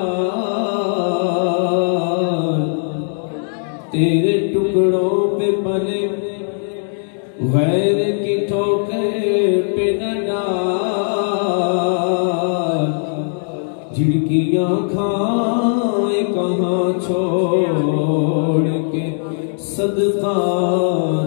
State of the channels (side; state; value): right; silent; 67 dB below the other